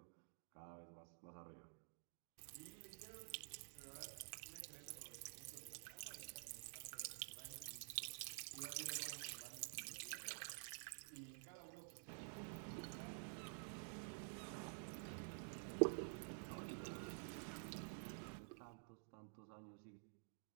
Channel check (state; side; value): silent; left; digital silence